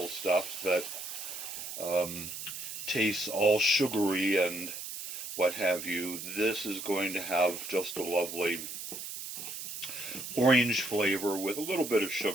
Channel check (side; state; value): right; noise; hiss, 8 dB below the sound